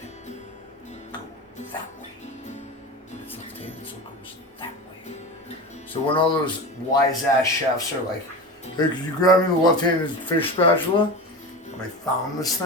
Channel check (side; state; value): both; normal; correlation 0.27